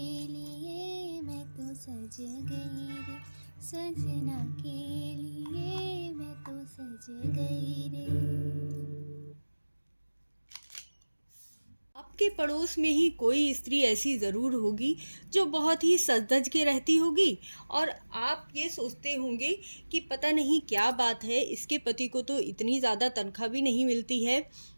लिए मैं तो सज गई रे सजना के लिए मैं तो सज गई रे। आपके पड़ोस में ही कोई स्त्री ऐसी ज़रूर होगी जो बहुत ही सज धज के रहती होगी और आप ये सोचते होंगे कि पता नहीं क्या बात है, इसके पति को तो इतनी ज़्यादा तनख्वाह भी नहीं मिलती है,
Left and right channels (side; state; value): both; inverted; correlation -1.00